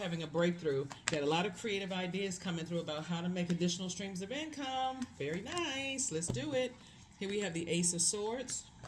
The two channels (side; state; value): both; identical; correlation 1.00